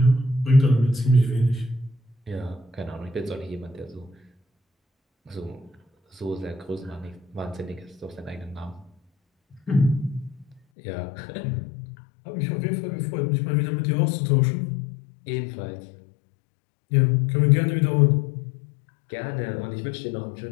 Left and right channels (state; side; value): drops out; right; at 10.6 s